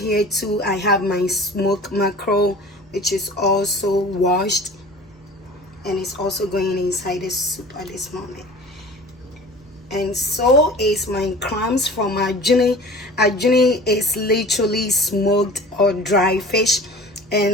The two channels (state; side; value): normal; both; correlation 0.42